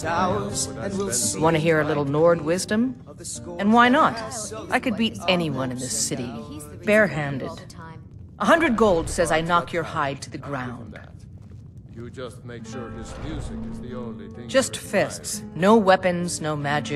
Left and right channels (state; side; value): identical; both; correlation 1.00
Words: Want to hear a little Nord wisdom? And why not? I could beat anyone in this city, barehanded. 100 gold says I knock your hide to the ground. You just make sure his music is the only thing. Just fists. No weapons, no